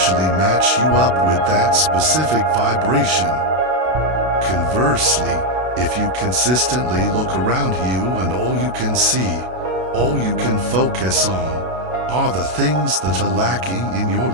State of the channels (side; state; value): left; late; 32 ms